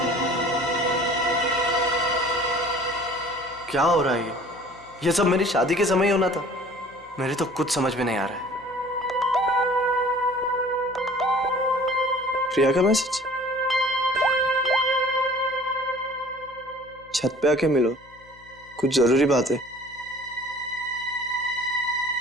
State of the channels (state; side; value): noise; left; hum, 26 dB below the sound